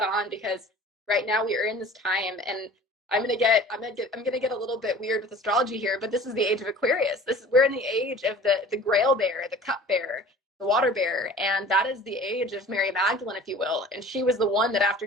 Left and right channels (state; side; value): normal; both; correlation 0.45